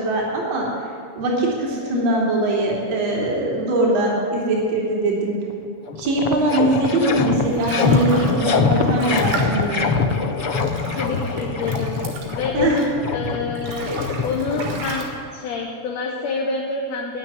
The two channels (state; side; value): late; left; 7.1 ms